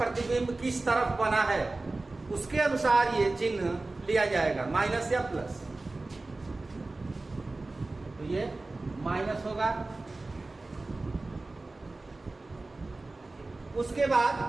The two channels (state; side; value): quieter; left; 3.2 dB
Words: किस तरफ बना है, उसके अनुसार ये चिन्ह लिया जाएगा, माइनस या प्लस। तो ये माइनस होगा। उसके बाद